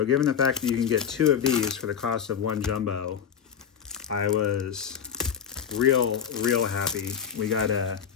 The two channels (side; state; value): right; quieter; 7.9 dB